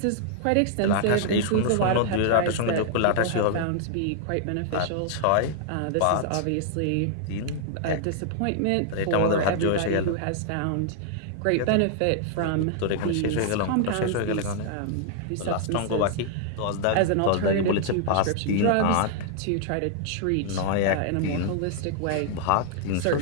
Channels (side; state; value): both; different; correlation -0.01